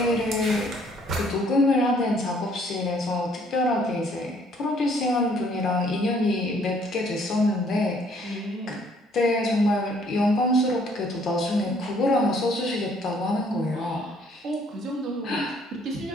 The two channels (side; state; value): both; normal; correlation 0.63